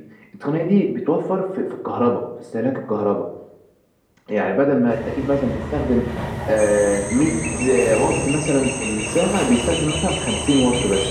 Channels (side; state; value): both; identical; correlation 1.00